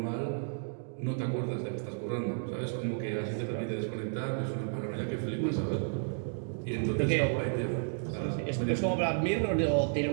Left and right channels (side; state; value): left; silent; digital silence